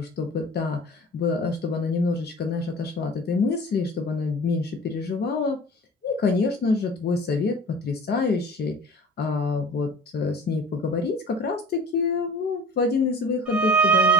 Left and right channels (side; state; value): both; normal; correlation 0.42